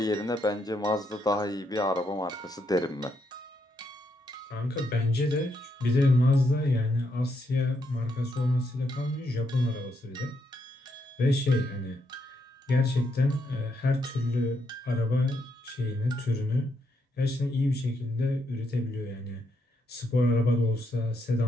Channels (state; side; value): normal; both; correlation 0.78